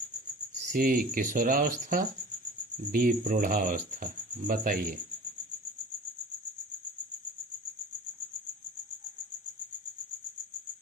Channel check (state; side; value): normal; both; correlation 0.40